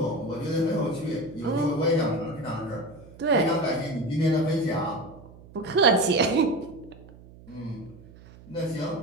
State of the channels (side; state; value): right; noise; hum, 21 dB below the sound